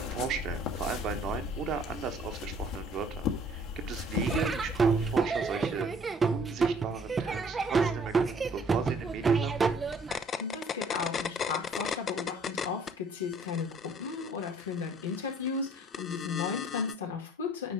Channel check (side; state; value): both; normal; correlation 0.57